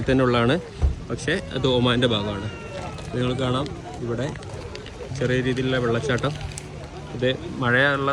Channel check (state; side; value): identical; both; correlation 1.00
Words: തന്നെ ഉള്ളതാണ്. പക്ഷേ അത് ഒമാൻ്റെ ഭാഗമാണ്. നിങ്ങൾ കാണാം ഇവിടെ ചെറിയ രീതിയിലുള്ള വെള്ളച്ചാട്ടം. ഇത് മഴയുള്ള